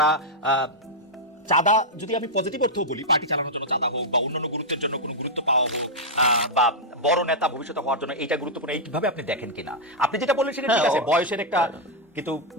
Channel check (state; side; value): normal; both; correlation -0.05